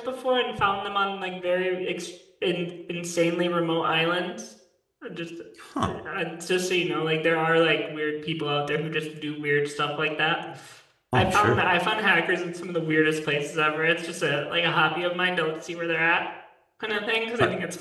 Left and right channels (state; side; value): identical; both; correlation 1.00